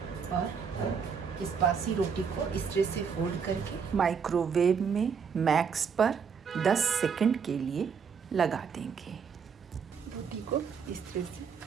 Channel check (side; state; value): left; quieter; 6.4 dB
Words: और इस बासी रोटी को इस तरह से फोल्ड करके माइक्रोवेव में मैक्स पर 10 सेकंड के लिए लगा देंगे। रोटी को इस तरह से